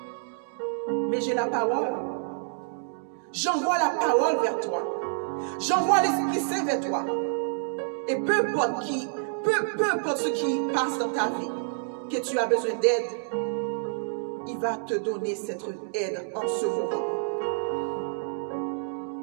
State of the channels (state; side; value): silent; left; digital silence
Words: Mais j'ai la parole. J'envoie la parole vers toi. J'envoie l'Esprit Saint vers toi. Et peu importe ce qui passe dans ta vie, que tu as besoin d'aide, il va te donner cette aide en ce moment.